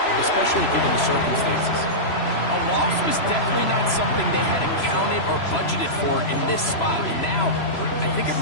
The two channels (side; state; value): right; late; 3.0 ms